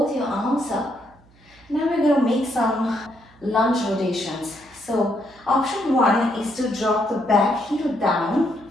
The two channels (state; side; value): noise; right; hum, 28 dB below the sound